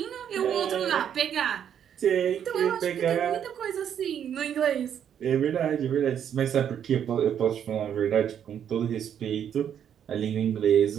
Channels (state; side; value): quieter; left; 9.0 dB